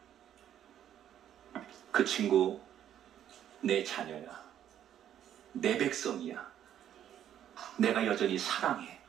그 친구 내 자녀야, 내 백성이야, 내가 여전히 사랑해.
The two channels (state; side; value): quieter; left; 10.5 dB